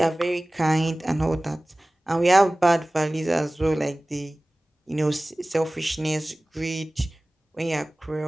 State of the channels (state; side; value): normal; both; correlation 0.98